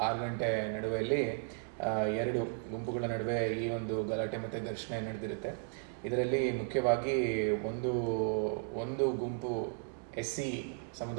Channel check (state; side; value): silent; left; 54 dB below the other